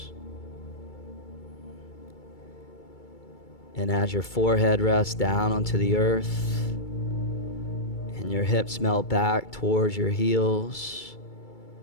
And as your forehead rests down onto the earth and your hips melt back towards your heels,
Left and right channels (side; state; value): right; late; 2.3 ms